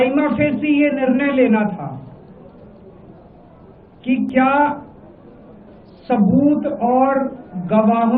फेसी ये निर्णय लेना था कि क्या सबूत और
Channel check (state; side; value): identical; both; correlation 1.00